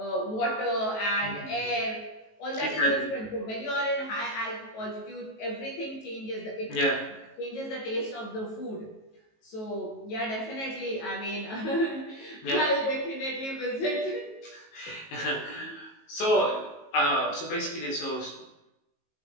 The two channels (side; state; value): right; late; 18 ms